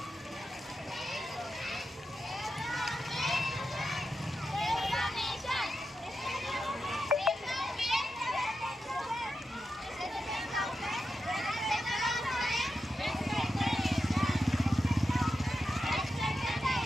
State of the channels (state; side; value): normal; both; correlation 0.89